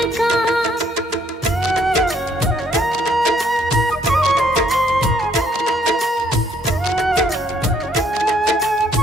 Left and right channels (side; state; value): both; normal; correlation 0.67